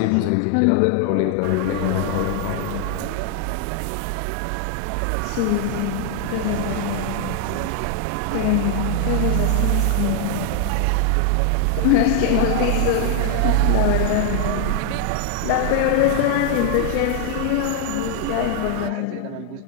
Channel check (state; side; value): different; both; correlation 0.00